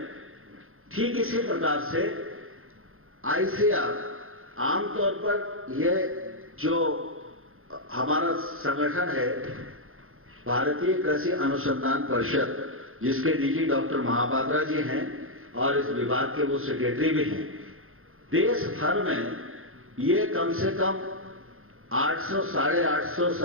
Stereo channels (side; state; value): left; late; 0.61 ms